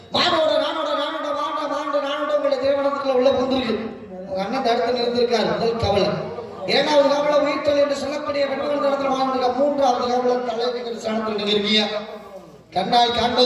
மானோட நானோட நானோட வாண்ட வாண்ட நானோட உங்களை திருமணத்துக்குள்ள உள்ள புந்திருக்கு. உங்க அண்ணன் தடுத்து நிறுத்திருக்காரு. முதல் கவலை. இரண்டாவது கவலை உயிர்த்தல் என்று சொல்லக்கூடிய பெண்கள் இடத்துல வாழ்ந்துருக்கா. மூன்றாவது கவலை தலைவர் ஸ்தானத்தில் நீங்க இருக்கீங்க. கண்ணால்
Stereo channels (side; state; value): both; identical; correlation 1.00